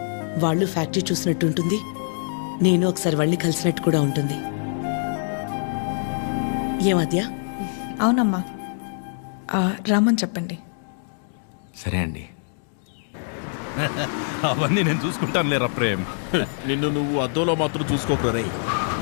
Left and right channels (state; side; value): silent; right; digital silence